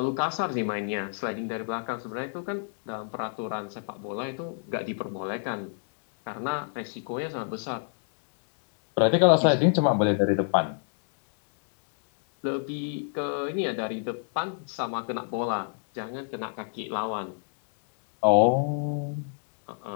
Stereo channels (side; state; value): right; silent; digital silence